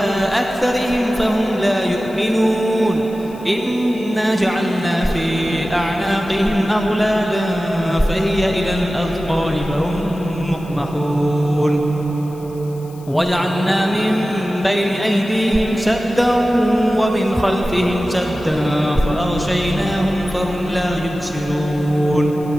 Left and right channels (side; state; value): left; noise; hiss, 25 dB below the sound